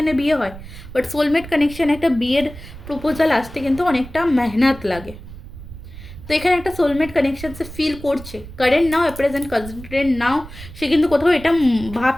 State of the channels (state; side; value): noise; right; rumble, 15 dB below the sound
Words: বিয়ে হয়, বাট সোলমেট কানেকশন, একটা বিয়ের প্রপোজাল আসতে কিন্তু অনেকটা মেহনত লাগে। তো এখানে একটা সোলমেট কানেকশন সে ফিল করছে, কারেন্ট নাও, প্রেজেন্ট কারেন্ট নাও, সে কিন্তু কোথাও এটা